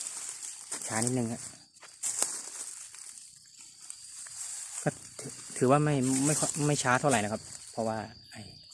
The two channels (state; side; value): identical; both; correlation 1.00